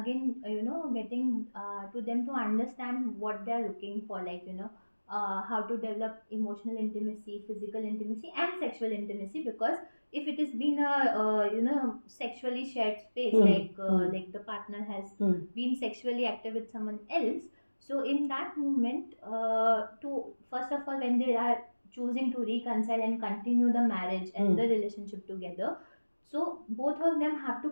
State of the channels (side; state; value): both; inverted; correlation -1.00